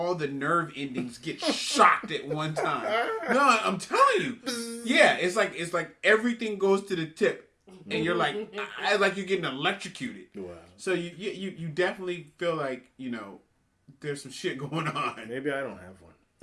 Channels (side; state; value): both; identical; correlation 1.00